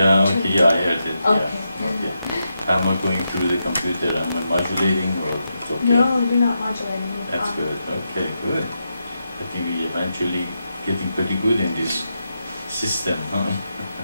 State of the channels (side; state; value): both; inverted; correlation -0.86